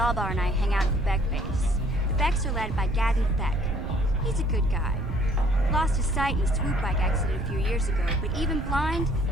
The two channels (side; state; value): right; noise; rumble, 7 dB below the sound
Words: and I hang out at the Beck base. The Becks are led by Gadden Thek. He's a good guy. Lost his sight in a swoop bike accident a few years ago, but even blind,